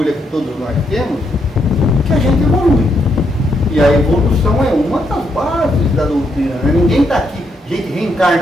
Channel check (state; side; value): normal; both; correlation 0.77